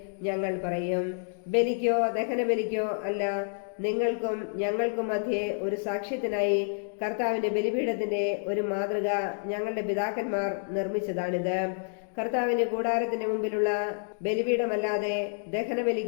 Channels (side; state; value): right; silent; digital silence